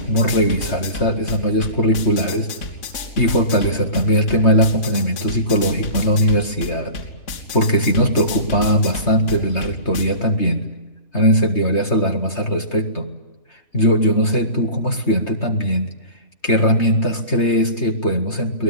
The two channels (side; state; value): right; late; 3.3 ms